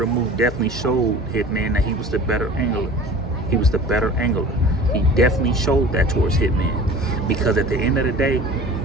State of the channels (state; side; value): normal; both; correlation 0.41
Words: Mook definitely showed Hitman that he was the better angler. He was the better angler. He definitely showed that towards Hitman, because at the end of the day,